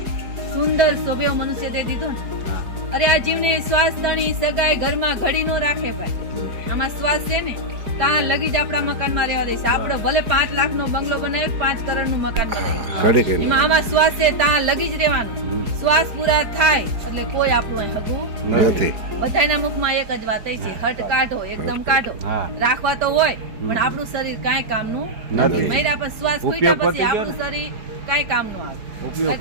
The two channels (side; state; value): left; late; 4.9 ms